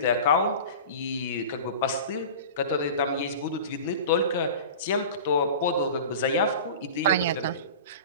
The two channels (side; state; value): both; inverted; correlation -0.35